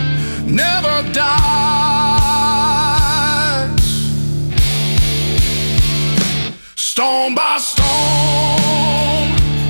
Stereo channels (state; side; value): inverted; both; correlation -1.00